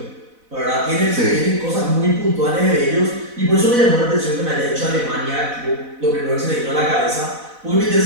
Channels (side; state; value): left; late; 4.0 ms